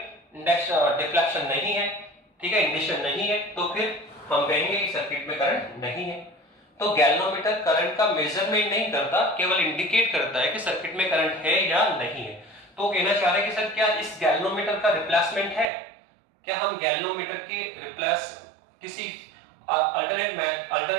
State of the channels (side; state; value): left; drops out; at 15.7 s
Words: डिफ्लेक्शन नहीं है, ठीक है, इंडिकेशन नहीं है, तो फिर हम कहेंगे कि सर्किट में करंट नहीं है। तो गैल्वेनोमीटर करंट का मेजरमेंट नहीं करता, केवल इंडिकेट करता है कि सर्किट में करंट है या नहीं है। तो कहना चाह रहे हैं कि सर क्या इस गैल्वेनोमीटर का रिप्लेसमेंट है, क्या हम गैल्वेनोमीटर की रिप्लेस किसी